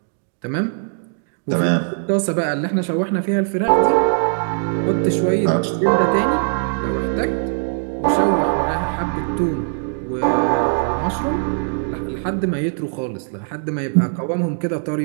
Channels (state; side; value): silent; left; 66 dB below the other